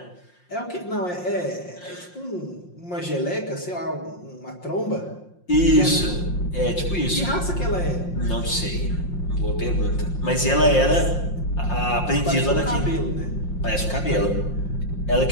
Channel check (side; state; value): right; late; 5.6 ms